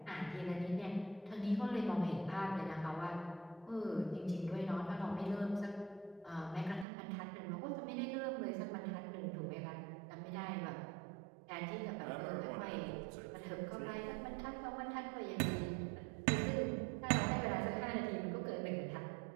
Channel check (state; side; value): drops out; left; at 6.9 s